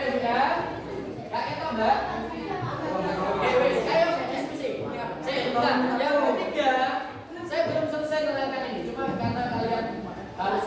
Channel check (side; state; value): both; identical; correlation 1.00